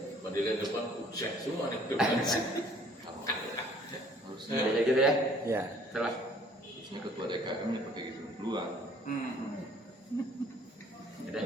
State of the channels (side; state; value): both; normal; correlation 0.57